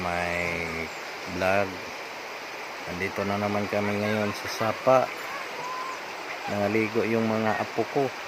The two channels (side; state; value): both; identical; correlation 1.00